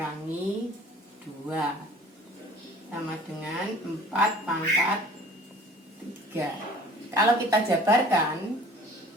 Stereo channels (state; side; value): normal; both; correlation 0.48